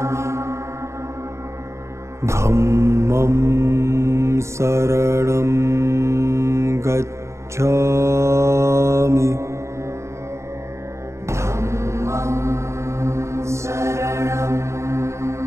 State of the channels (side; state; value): left; late; 0.14 ms